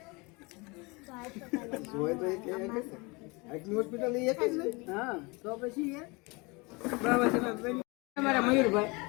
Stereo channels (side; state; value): right; quieter; 27.2 dB